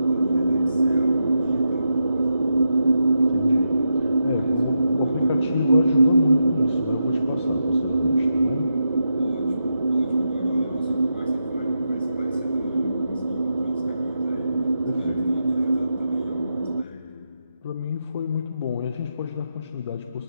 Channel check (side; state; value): both; inverted; correlation -0.86